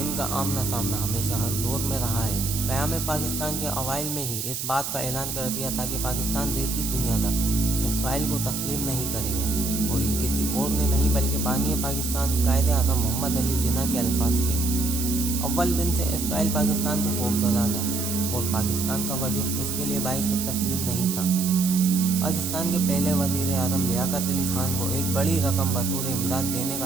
ان کا آمنا سامنا ہمیشہ ہر دور میں رہا ہے۔ قیام پاکستان کے اوائل میں ہی اس بات کا اعلان کر دیا تھا کہ پاکستان رہتی دنیا تک اسرائیل کو تسلیم نہیں کرے گا، اور یہ کسی اور نے نہیں بلکہ بانی پاکستان قائد اعظم محمد علی جناح کے الفاظ تھے۔ اول دن سے اسرائیل پاکستان سے خوفزدہ تھا اور پاکستان کا وجود اس کے لیے باعث تسلیم نہیں تھا۔ پاکستان کے پہلے وزیر اعظم لیاقت علی خان کو ایک بڑی رقم بطور امداد دینے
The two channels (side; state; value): right; noise; hiss, 4 dB below the sound